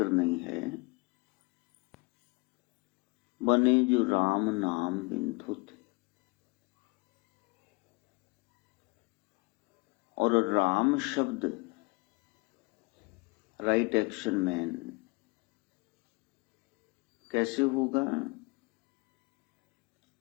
नहीं है, बने जो राम नाम बिन थोथे। और राम शब्द राइट एक्शन मैन कैसे होगा।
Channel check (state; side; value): quieter; right; 28.5 dB